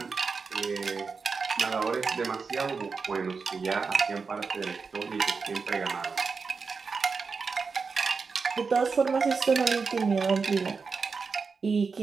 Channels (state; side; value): quieter; left; 5.0 dB